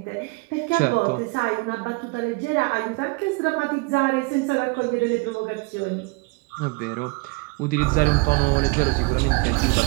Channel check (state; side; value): quieter; left; 27.3 dB